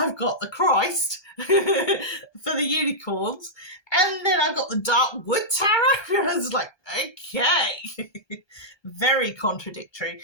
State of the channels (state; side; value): late; right; 1.2 ms